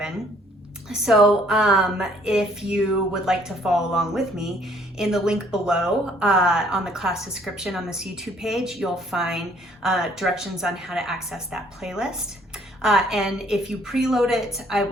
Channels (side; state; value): both; normal; correlation 0.62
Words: So if you would like to follow along with me, in the link below on the class description on this YouTube page, you'll find directions on how to access that playlist. And if you preload it, I